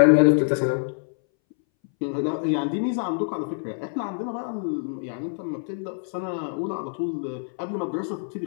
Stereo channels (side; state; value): right; silent; 61 dB below the other